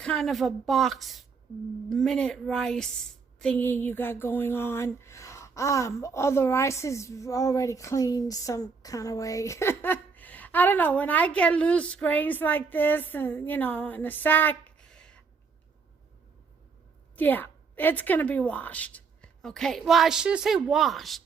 of a box minute rice thingy you got going on. All the rice is already cleaned some kind of way. I don't know. When I get loose grains like this and, in a sack, yeah, it's going to be washed. Okay. Well, I should say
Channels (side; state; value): left; quieter; 5.1 dB